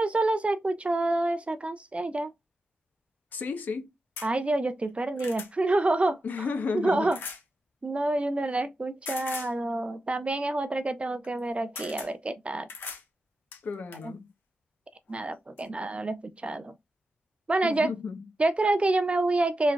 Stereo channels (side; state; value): both; normal; correlation 0.90